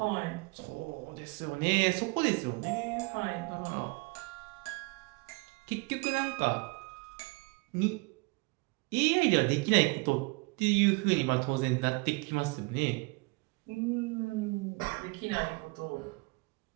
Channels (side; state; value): left; quieter; 28.5 dB